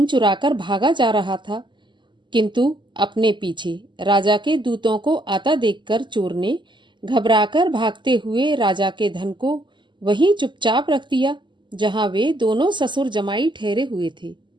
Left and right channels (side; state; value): left; late; 0.22 ms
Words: चुराकर भागा जा रहा था, किंतु अपने पीछे राजा के दूतों को आता देखकर चोर ने घबराकर भागते हुए राजा के धन को वहीं चुपचाप रख दिया जहां वे दोनों ससुर जमाई ठहरे हुए थे।